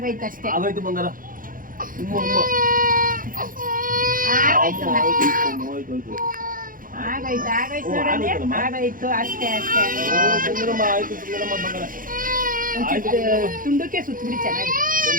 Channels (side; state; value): left; late; 0.40 ms